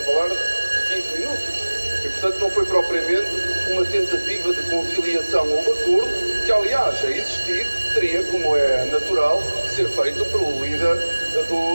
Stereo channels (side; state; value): both; inverted; correlation -1.00